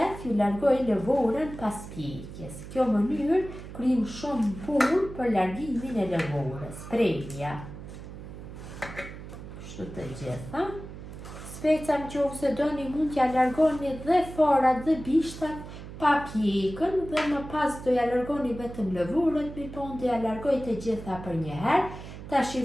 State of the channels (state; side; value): noise; right; hum, 12 dB below the sound